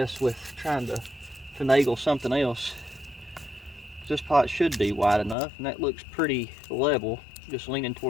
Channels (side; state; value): right; drops out; at 5.4 s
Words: with trying to finagle something else. This pot should be wide enough, and that looks pretty level, just leaning